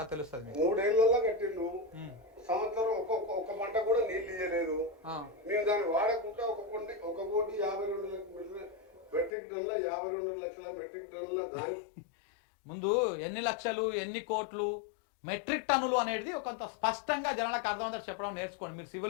తెలుస్తుంది. 3 ఏళ్లలో కట్టిండు, సంవత్సరం ఒక పంట కూడా నీళ్ళు ఇయ్యలేదు. మేము దాన్ని వాడకుండా 1,52,00,000 మెట్రిక్ టన్నుల 52 లక్షల మెట్రిక్ టన్నుల దాని ముందు ఎన్ని లక్షలు, ఎన్ని కోట్లు, మెట్రిక్ టన్నులు అనేది కొంత స్పష్టంగా జనాలకు అర్థమవుతారు చెప్పడం నేర్చుకోండి. మీరు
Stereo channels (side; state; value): right; drops out; at 9.3 s